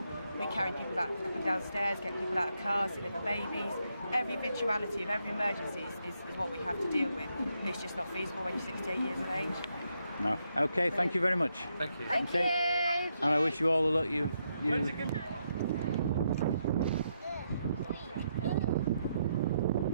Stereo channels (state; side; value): inverted; both; correlation -0.79